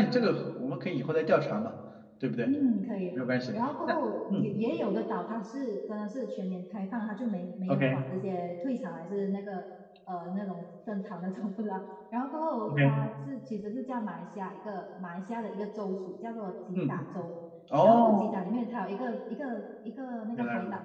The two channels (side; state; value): both; identical; correlation 1.00